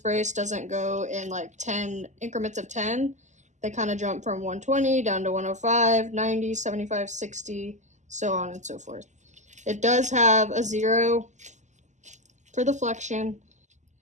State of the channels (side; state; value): left; late; 0.34 ms